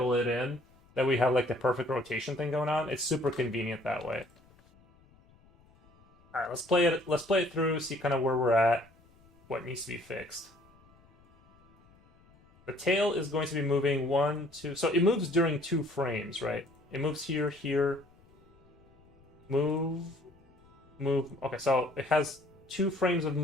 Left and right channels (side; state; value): left; noise; rumble, 29 dB below the sound